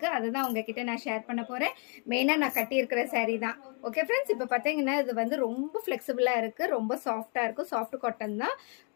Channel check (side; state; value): right; quieter; 37.9 dB